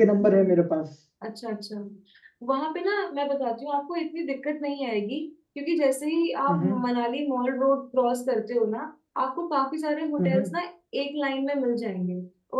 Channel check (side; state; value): both; identical; correlation 1.00